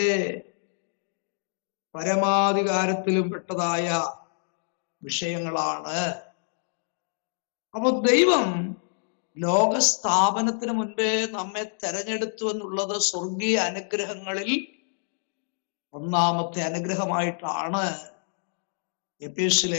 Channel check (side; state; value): right; silent; digital silence